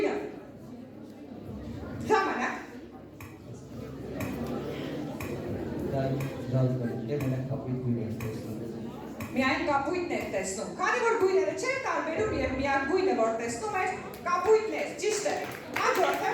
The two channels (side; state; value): both; identical; correlation 1.00